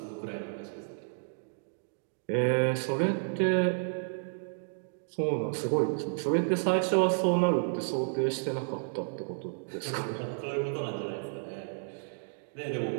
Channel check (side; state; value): left; silent; digital silence